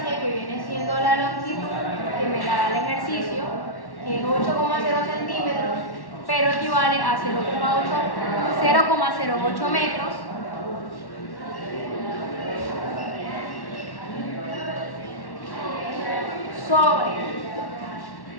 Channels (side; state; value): right; late; 1.1 ms